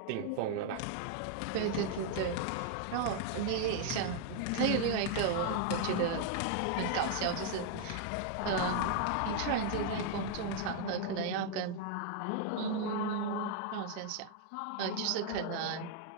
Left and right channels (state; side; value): different; both; correlation 0.00